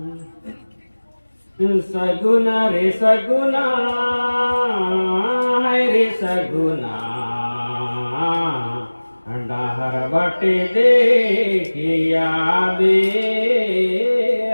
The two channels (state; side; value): inverted; both; correlation -1.00